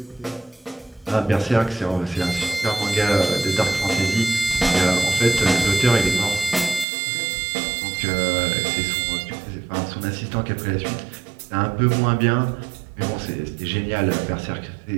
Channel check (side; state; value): left; drops out; at 6.9 s